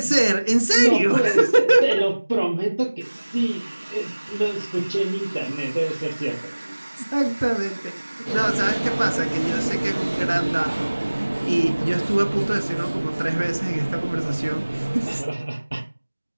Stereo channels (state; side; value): inverted; both; correlation -1.00